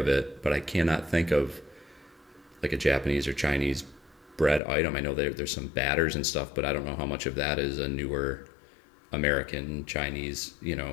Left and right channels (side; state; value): right; drops out; at 4.6 s